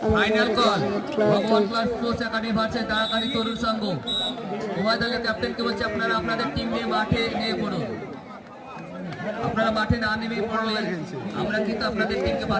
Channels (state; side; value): identical; both; correlation 1.00